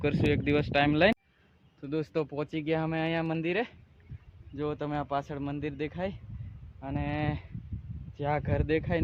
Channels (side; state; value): both; identical; correlation 1.00